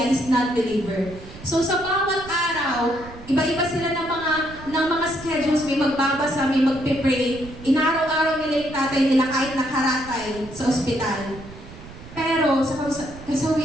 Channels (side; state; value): right; noise; rumble, 16 dB below the sound